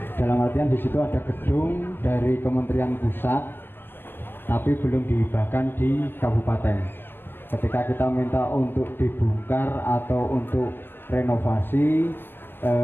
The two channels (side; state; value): right; late; 0.098 ms